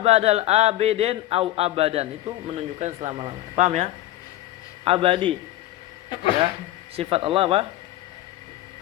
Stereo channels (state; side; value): quieter; right; 15.1 dB